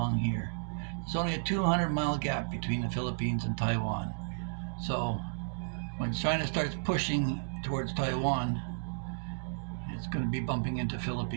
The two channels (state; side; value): silent; left; digital silence